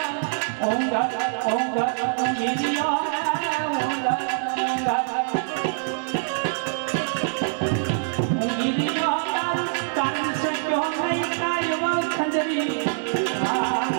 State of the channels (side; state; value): left; silent; 56 dB below the other